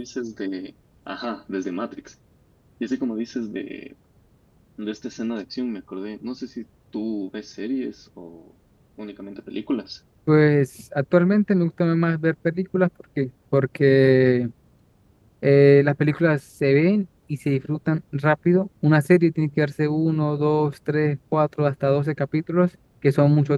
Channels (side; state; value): both; identical; correlation 1.00